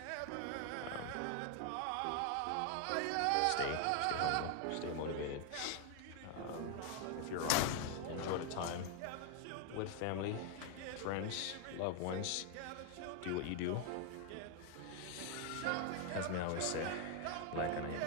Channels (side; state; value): both; different; correlation 0.00